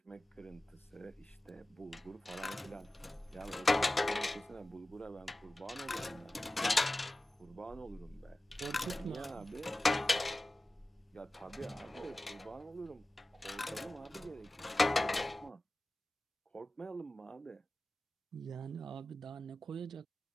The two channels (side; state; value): both; normal; correlation 0.95